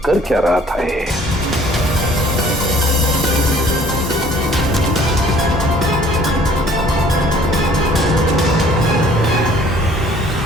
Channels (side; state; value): both; normal; correlation 0.55